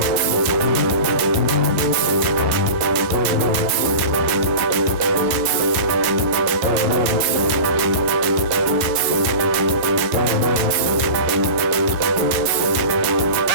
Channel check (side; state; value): left; late; 11 ms